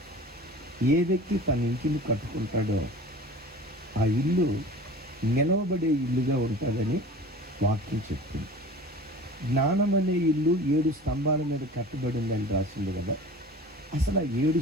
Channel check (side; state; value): both; normal; correlation 0.40